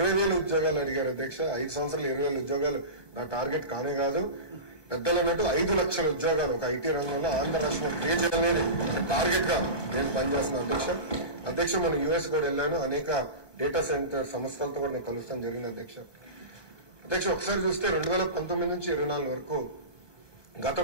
ఉద్యోగాలు అడిగారు అధ్యక్ష. 5 సంవత్సరాలు 20,000 ఉద్యోగాలు నా టార్గెట్ కానే కాదు. పెద్దలు అన్నట్టు 5 లక్షల ఉద్యోగాలు ఒక ఐటీ రంగంలో ఆంధ్ర రాష్ట్రంలో క్రియేట్ చేయాలనేది టార్గెట్ గా నేను పనిచేస్తున్నాను అధ్యక్ష. మనం యుఎస్ కూడా వెళ్ళాను. అనేక డేటా సెంటర్ సంస్థలతో కూడా నేను కలుస్తాను జరిగింది అధ్యక్ష. ఒకసారి చూస్తే 2019 నుంచి 24 వరకు గత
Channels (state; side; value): late; right; 1.1 ms